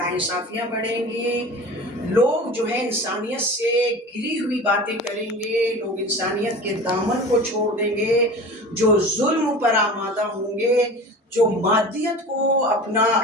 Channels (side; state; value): both; normal; correlation 0.36